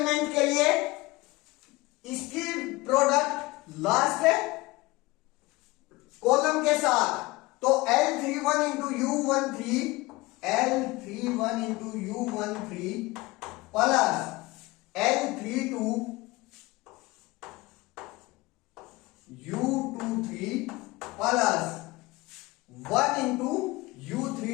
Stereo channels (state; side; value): quieter; right; 21.6 dB